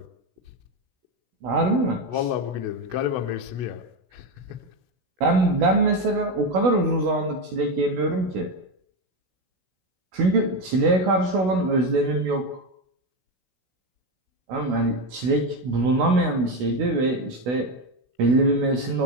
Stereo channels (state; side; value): late; left; 16 ms